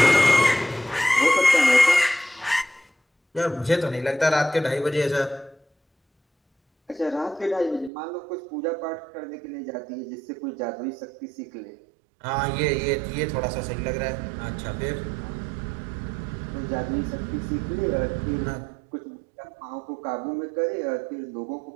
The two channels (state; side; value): drops out; left; at 7.9 s